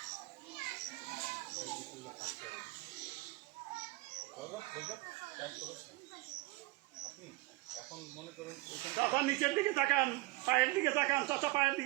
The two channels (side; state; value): left; quieter; 20.8 dB